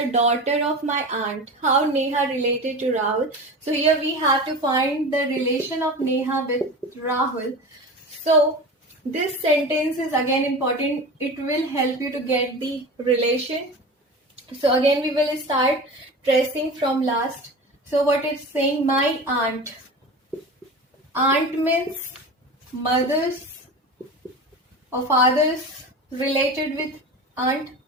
daughter of my aunt. How Neha related to Rahul? So here we have to find the relation of Neha with Rahul. So this sentence is again important. It will help you to get the relation. So again we will start tracing from last. So what it's saying, my aunt. Aunt means mothers or fathers related with aunt.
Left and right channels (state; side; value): normal; both; correlation 0.31